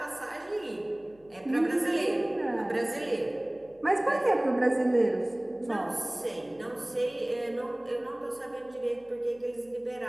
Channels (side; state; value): left; noise; hum, 28 dB below the sound